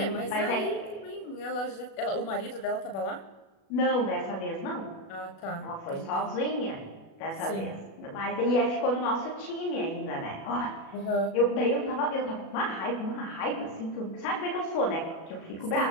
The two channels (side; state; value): right; late; 36 ms